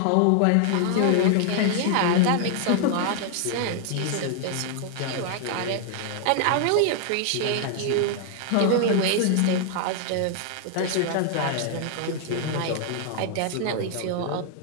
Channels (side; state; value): both; different; correlation 0.00